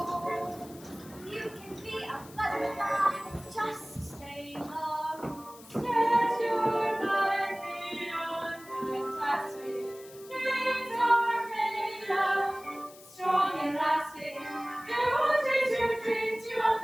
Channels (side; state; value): left; noise; hiss, 21 dB below the sound